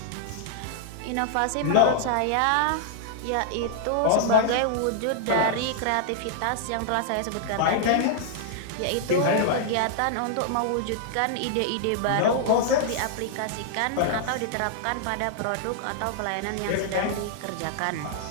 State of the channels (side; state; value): both; different; correlation -0.01